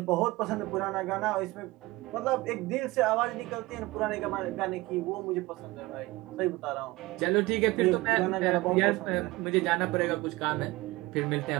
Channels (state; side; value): quieter; left; 20.5 dB